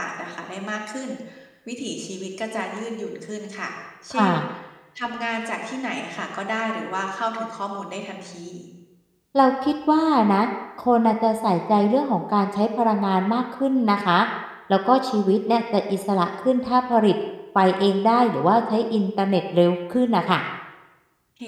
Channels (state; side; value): identical; both; correlation 1.00